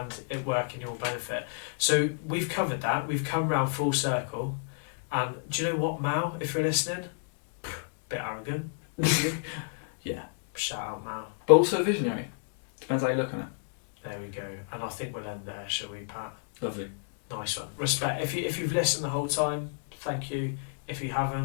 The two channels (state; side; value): silent; right; digital silence